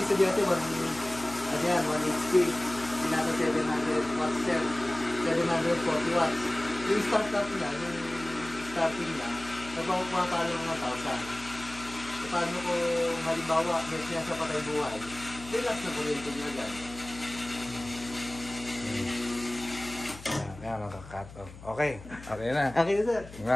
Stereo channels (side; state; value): left; noise; hum, 16 dB below the sound